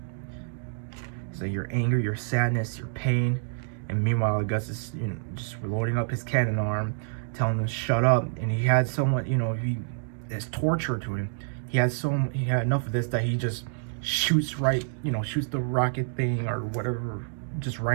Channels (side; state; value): left; silent; digital silence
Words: So your anger, your sadness, your pain, and meanwhile Gus is, you know, just loading up his cannon arm, telling him to shut up. And he had someone, you know, it's torture to him. He had enough of this that he just shoots the rocket thing or whatever, just